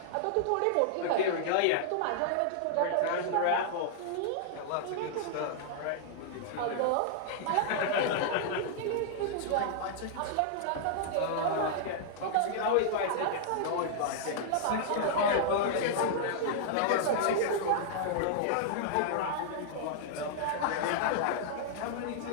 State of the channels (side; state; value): both; different; correlation -0.01